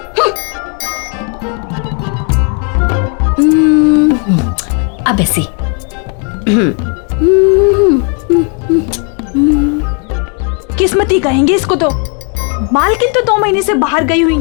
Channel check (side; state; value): right; quieter; 37.6 dB